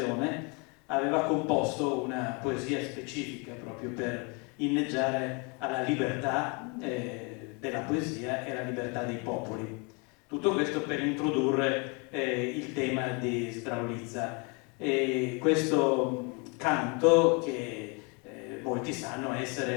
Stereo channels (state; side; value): quieter; right; 32.1 dB